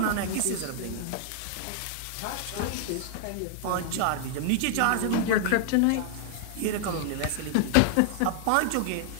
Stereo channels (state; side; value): different; both; correlation -0.01